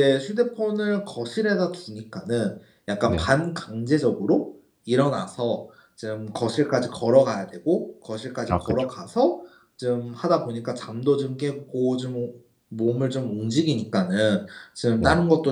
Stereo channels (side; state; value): both; identical; correlation 1.00